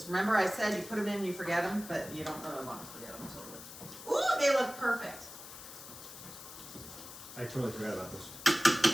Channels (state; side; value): noise; left; hiss, 13 dB below the sound